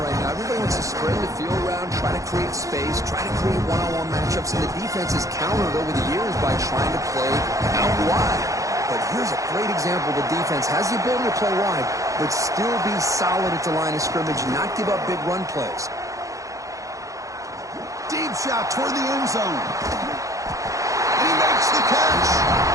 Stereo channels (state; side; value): late; left; 0.16 ms